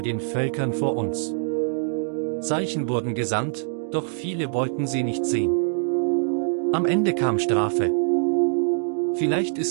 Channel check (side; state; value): left; silent; digital silence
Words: den Völkern vor uns. Zeichen wurden gesandt, doch viele wollten sie nicht sehen. Am Ende kam Strafe. Vielleicht